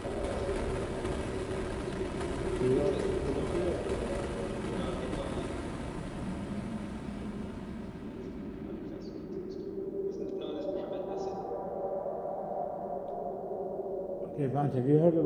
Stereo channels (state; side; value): identical; both; correlation 1.00